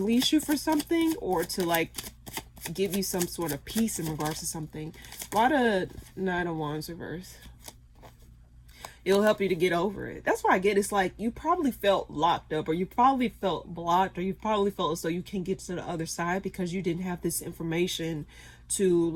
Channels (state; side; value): identical; both; correlation 1.00